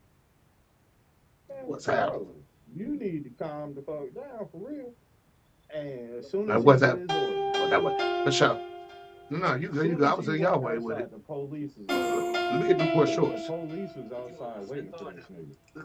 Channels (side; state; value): both; identical; correlation 1.00